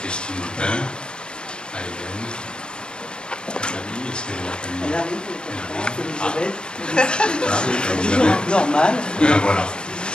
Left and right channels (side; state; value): right; late; 0.050 ms